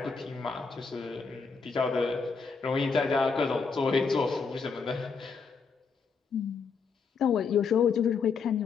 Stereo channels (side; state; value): right; quieter; 5.2 dB